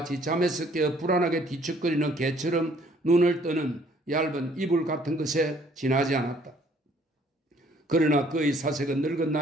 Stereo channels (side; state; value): both; normal; correlation 0.61